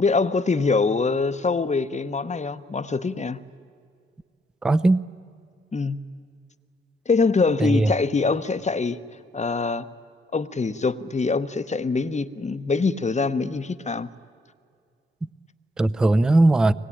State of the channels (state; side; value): normal; both; correlation 0.72